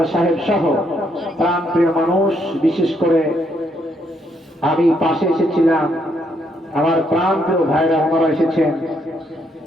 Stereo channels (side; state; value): both; normal; correlation 0.74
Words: সাহেব সহ প্রাণপ্রিয় মানুষ, বিশেষ করে আমি পাশে এসেছিলাম, আমার প্রাণপ্রিয় ভাইরা ওনারা এসেছেন।